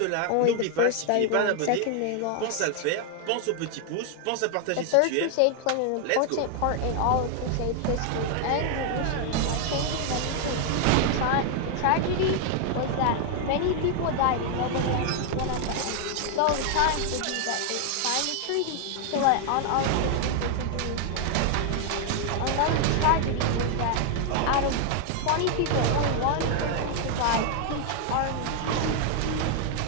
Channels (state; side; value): different; both; correlation 0.00